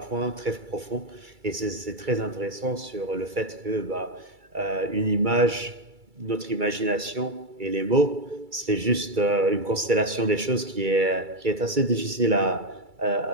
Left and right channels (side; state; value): left; late; 2.3 ms